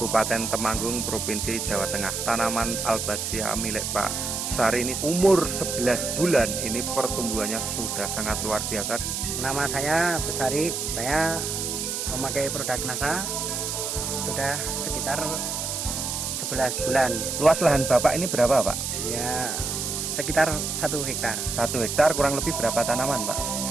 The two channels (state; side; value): noise; right; hiss, 3 dB below the sound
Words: Temanggung, Provinsi Jawa Tengah. Tanaman Albazia milik Pak Besari ini umur 11 bulan, ini pertumbuhannya sudah sangat luar biasa. Nama saya Besari, saya memakai produk NASA sudah sekitar 11 bulan. Luas lahan Bapak ini berapa, Pak? Ya, sekitar 1 hektar. 1 hektar kurang lebih berapa tanaman, Pak?